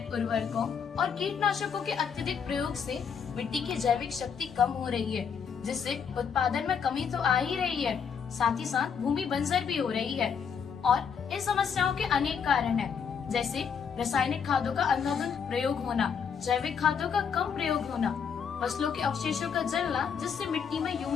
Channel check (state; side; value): quieter; right; 6.8 dB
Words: उर्वरकों और कीटनाशकों के अत्यधिक प्रयोग से मिट्टी की जैविक शक्ति कम हो रही है, जिससे उत्पादन में कमी तो आ ही रही है, साथ ही साथ भूमि बंजर भी हो रही है। और इन समस्याओं के अनेक कारण हैं, जैसे रासायनिक खादों का अंधाधुंध प्रयोग होना, जैविक खादों का कम प्रयोग होना, फसलों के अवशेषों का जलना जिससे मिट्टी में